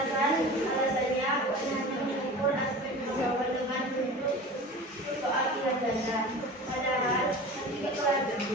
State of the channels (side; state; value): both; normal; correlation 0.36